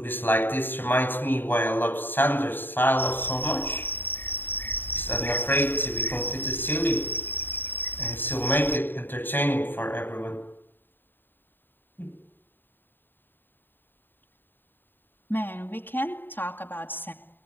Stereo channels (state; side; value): late; right; 0.094 ms